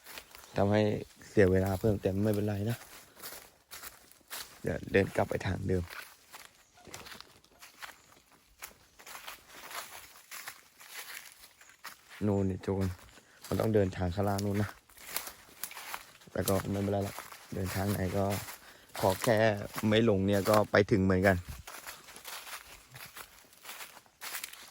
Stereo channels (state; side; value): identical; both; correlation 1.00